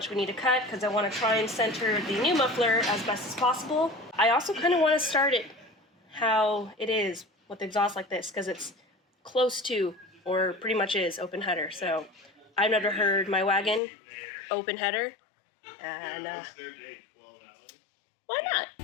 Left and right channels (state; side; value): drops out; right; at 13.8 s